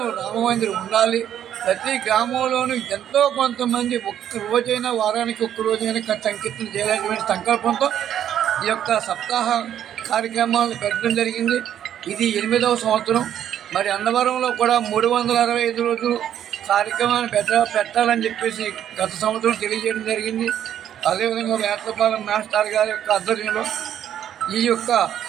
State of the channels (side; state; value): left; quieter; 10.3 dB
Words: రామమందిరం ఉండాలి. ప్రతి గ్రామంలోనూ ఎంతో కొంతమంది ఒక్క రోజైనా, వారానికి ఒక్క రోజైనా సంకీర్తన చేయాలనేటువంటి సంకల్పంతో ఈ యొక్క సప్తాహ కార్యక్రమాలు పెట్టడం జరిగింది. ఇది 8వ సంవత్సరం. మరి అన్నవరంలో కూడా 365 రోజులు కార్యక్రమాన్ని పెట్టాలని చెప్పేసి గత సంవత్సరం తెలియజేయడం జరిగింది. అదేవిధంగా వేట్లపాలెం మాస్టర్ గారి యొక్క ఆధ్వర్యంలో ఈ యొక్క